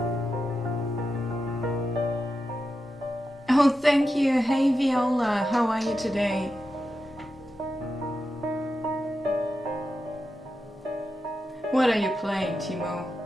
Oh, thank you. Hey, Viola. How are you today? What are you playing, Timo?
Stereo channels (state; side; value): normal; both; correlation 0.89